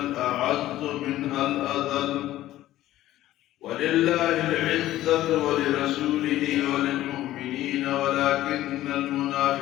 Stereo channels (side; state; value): right; quieter; 14.5 dB